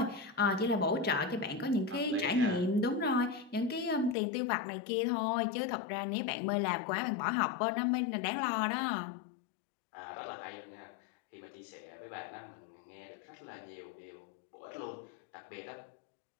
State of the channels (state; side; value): drops out; right; at 4.2 s